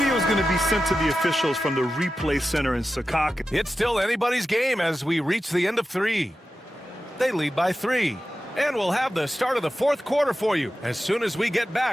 is going to be sent to the officials from the replay center in Secaucus. It's still anybody's game as we reach the end of 3. They lead by 3. And we'll have the start of the fourth quarter for you as soon as we get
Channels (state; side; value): normal; both; correlation 0.92